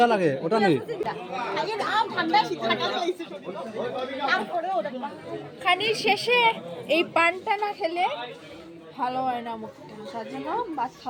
लगे ওটা নেই। আগে আম ঠান্ডা শীত থাকা খাইছি তারপরে ওটা খানির শেষে এই পানটা না খেলে ভালো হয় না মুখটা, তার জন্য ভাত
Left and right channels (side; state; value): both; identical; correlation 1.00